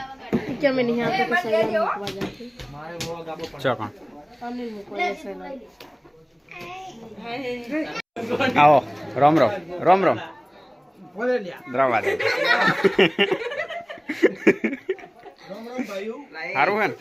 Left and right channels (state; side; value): identical; both; correlation 1.00